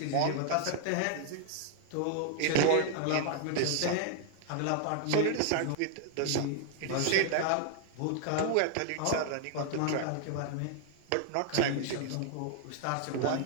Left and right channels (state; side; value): different; both; correlation 0.00